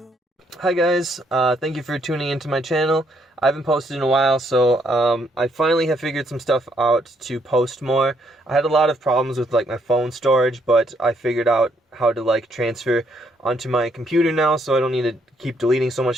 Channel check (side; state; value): both; normal; correlation 0.71